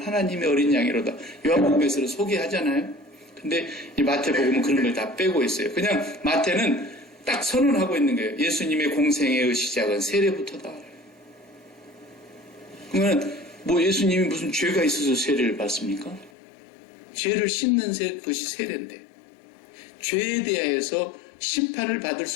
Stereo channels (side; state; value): right; drops out; at 16.3 s